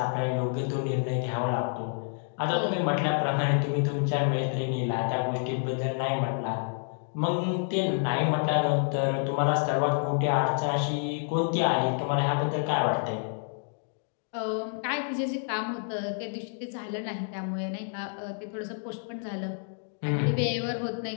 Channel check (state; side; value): silent; right; 59 dB below the other